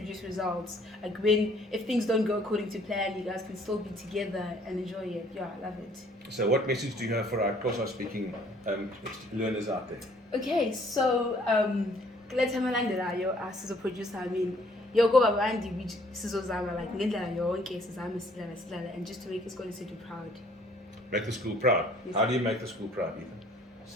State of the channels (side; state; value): both; normal; correlation 0.60